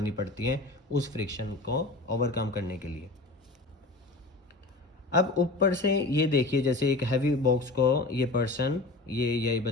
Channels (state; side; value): quieter; right; 3.1 dB